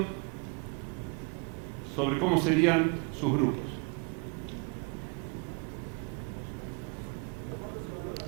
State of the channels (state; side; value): quieter; left; 32.5 dB